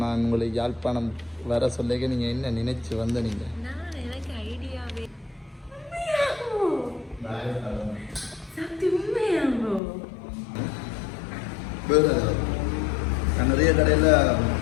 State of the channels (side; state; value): right; drops out; at 9.8 s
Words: நான் உங்களுக்கு யாழ்ப்பாணம் வர சொல்லிக்க நீங்கள் என்ன நினைச்சு வந்த நீங்கள்? எனக்கு ஐடியாவே நான் நிறைய கடையில்